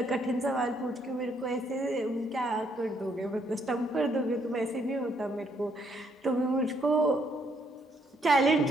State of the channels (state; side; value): normal; both; correlation 0.71